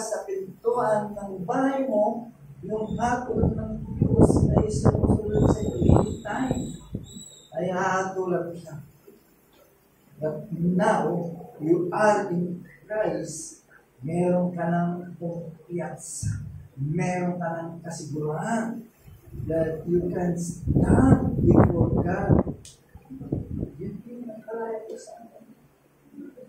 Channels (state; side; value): identical; both; correlation 1.00